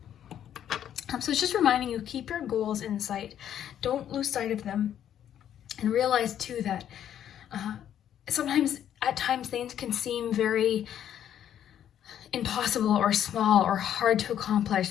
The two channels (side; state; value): right; quieter; 10.2 dB